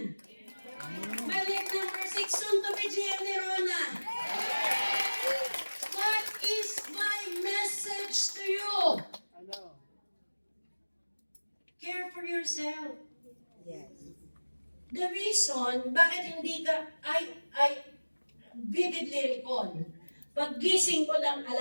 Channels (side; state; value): both; inverted; correlation -1.00